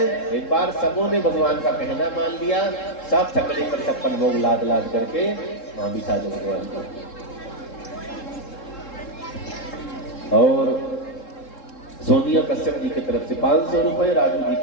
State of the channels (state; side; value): late; right; 3.7 ms